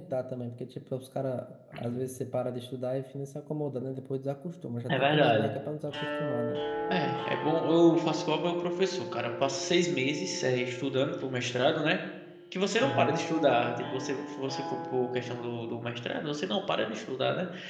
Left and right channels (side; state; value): both; identical; correlation 1.00